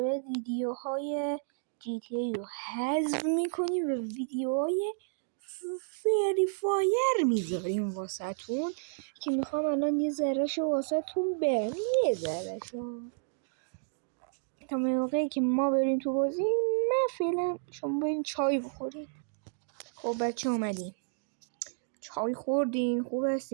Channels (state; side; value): silent; left; digital silence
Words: بعد ویدیوهای GTA رو حذف میکنیم و ویدیوهای فری فایر میذاریم واسهتون که میخوام الان یه ذرهشو واسهتون برم، یه ذرهشو تا موقعی که ما بریم تو بازی. من فعلا شما برین چای بخورین. خب بچه اومدیم، چای خوردین، خوب